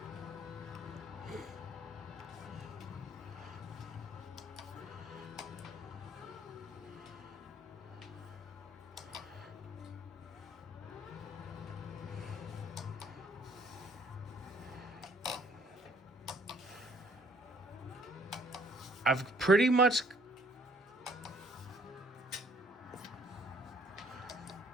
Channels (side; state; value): both; normal; correlation 0.61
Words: I've pretty much